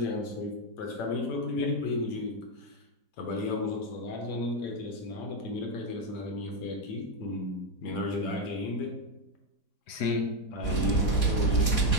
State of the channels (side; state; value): right; late; 4.2 ms